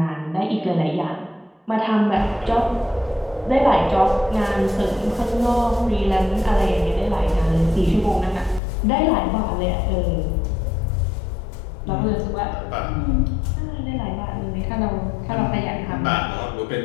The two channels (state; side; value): drops out; right; at 8.6 s